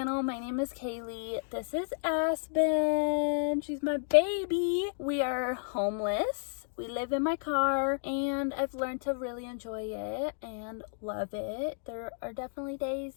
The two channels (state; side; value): silent; right; digital silence